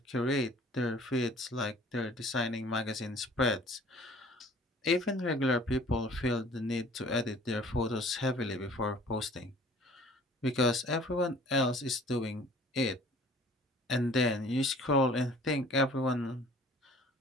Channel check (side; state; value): both; normal; correlation 0.52